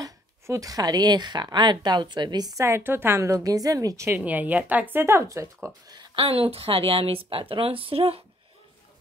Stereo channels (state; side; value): normal; both; correlation 0.65